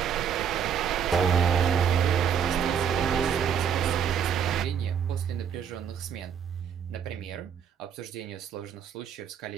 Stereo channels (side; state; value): left; quieter; 7.9 dB